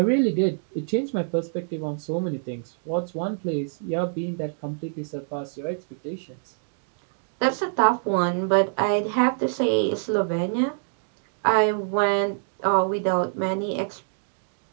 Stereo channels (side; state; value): left; silent; digital silence